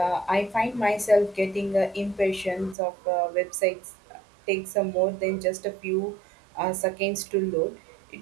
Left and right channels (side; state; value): left; drops out; at 2.8 s